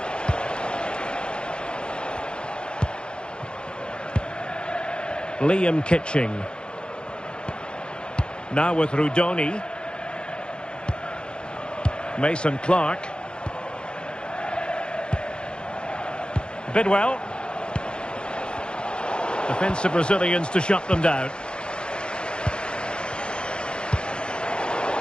Liam Kitching. Now with Rudoni. Mason Clark. Bidwell. Defensive Brazilians to shut them down.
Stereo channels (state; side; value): late; right; 0.051 ms